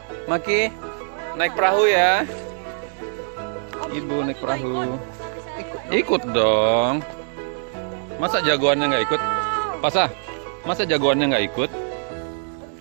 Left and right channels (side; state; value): left; silent; 64 dB below the other